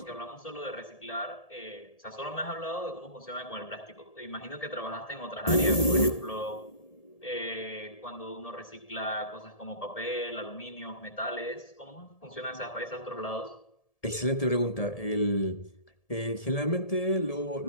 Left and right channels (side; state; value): right; late; 1.7 ms